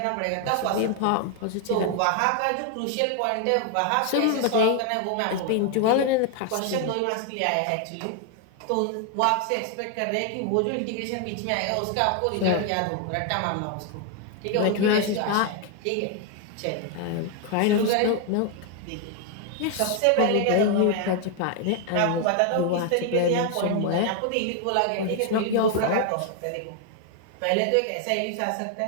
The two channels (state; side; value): different; both; correlation 0.00